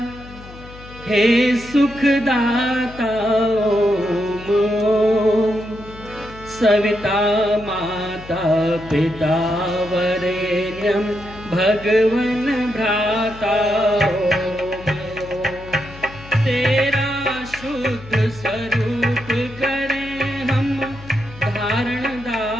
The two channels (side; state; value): left; noise; hum, 17 dB below the sound